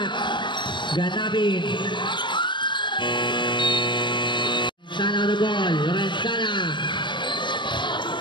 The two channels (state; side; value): late; right; 0.22 ms